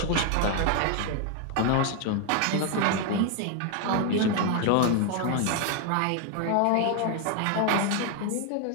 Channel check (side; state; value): both; different; correlation 0.01